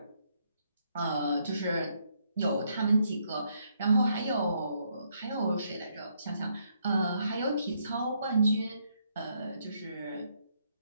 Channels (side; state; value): both; inverted; correlation -0.74